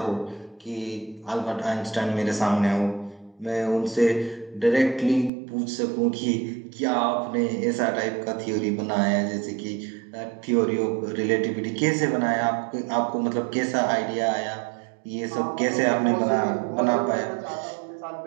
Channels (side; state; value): left; drops out; at 5.3 s